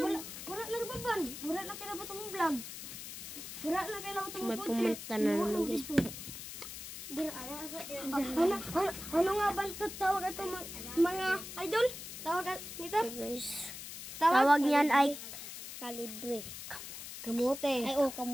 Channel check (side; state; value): left; noise; hiss, 10 dB below the sound